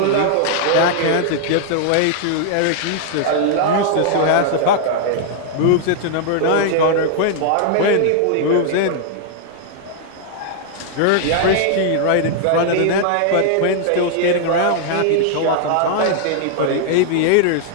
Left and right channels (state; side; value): different; both; correlation -0.01